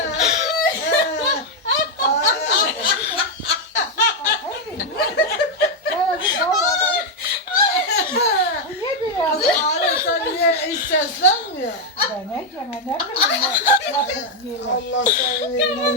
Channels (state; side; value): normal; both; correlation 0.01